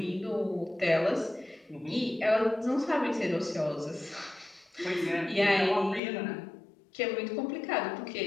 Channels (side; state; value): right; drops out; at 6.0 s